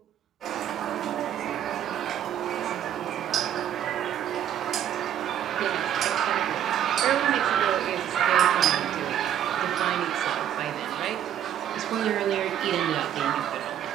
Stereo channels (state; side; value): quieter; left; 10.3 dB